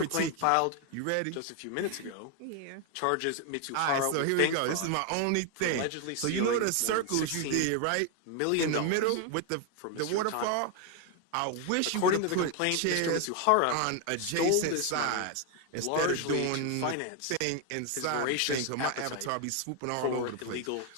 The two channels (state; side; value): different; both; correlation 0.01